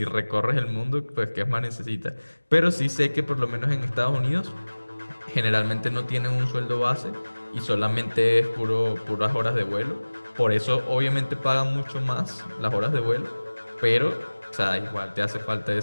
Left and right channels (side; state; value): both; inverted; correlation -1.00